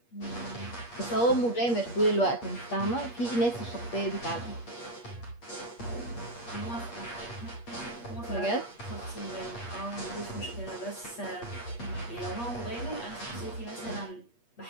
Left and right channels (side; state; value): right; late; 8.4 ms